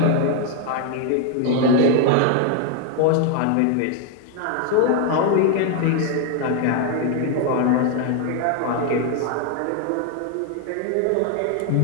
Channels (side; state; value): both; different; correlation 0.01